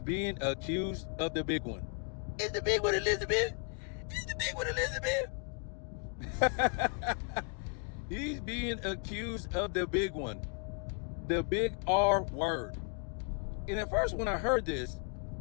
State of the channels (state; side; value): quieter; right; 38.1 dB